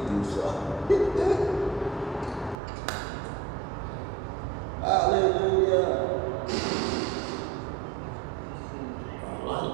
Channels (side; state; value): left; drops out; at 2.6 s